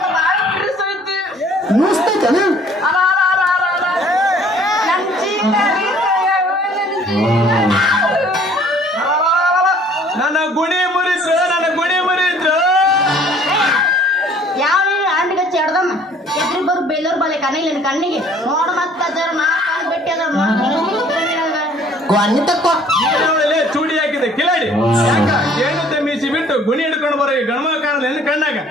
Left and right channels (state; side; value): normal; both; correlation 0.55